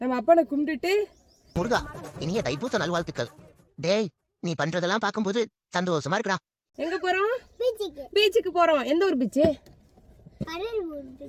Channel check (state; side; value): identical; both; correlation 1.00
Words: நம்ம அப்பனை கும்பிட்டுட்டு முருகா இனிய தைப்பூச நல்வாழ்த்துக்கள். டேய் நீ பண்றதெல்லாம் பாக்கும்போது சந்தோஷமா இருக்குடா. எங்க போறோம்? பீச்சுக்கு போறோம். எந்த ஒரு பீச்சு?